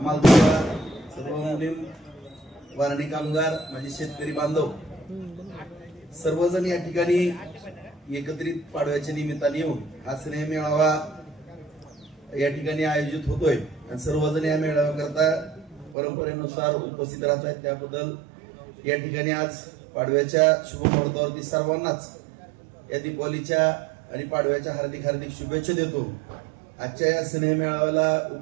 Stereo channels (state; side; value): drops out; left; at 16.0 s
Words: सर्व मुलीम, वारणी कामगार, माझे शेतकरी बांधव सर्वजण या ठिकाणी एकत्रित पाडव्याच्या निमित्ताने येऊन हा स्नेह मेळावा या ठिकाणी आयोजित होतोय आणि सर्वजण या मेळाव्याकरता परंपरेनुसार उपस्थित राहत आहेत। त्याबद्दल या ठिकाणी आज पाडव्याच्या शुभ मुहूर्तावरती सर्वांनाच या दीपावलीच्या आणि पाडव्याच्या हार्दिक हार्दिक शुभेच्छा देतो। आजच्या या स्नेह मेळाव्याला